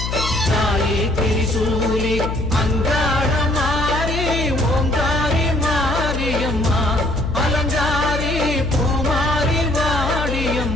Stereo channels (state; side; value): noise; left; hum, 3 dB below the sound